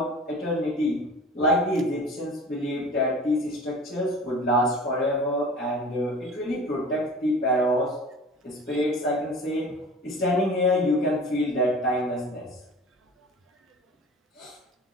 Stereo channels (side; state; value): both; normal; correlation 0.40